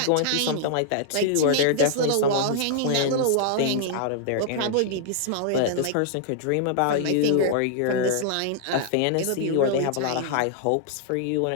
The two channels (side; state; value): both; different; correlation -0.01